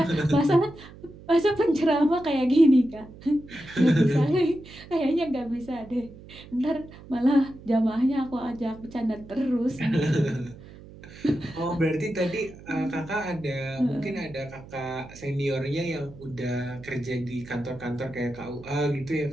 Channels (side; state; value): right; noise; hum, 18 dB below the sound